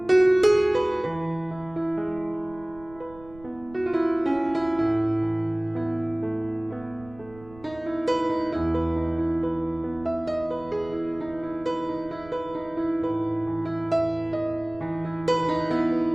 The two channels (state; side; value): noise; right; rumble, 21 dB below the sound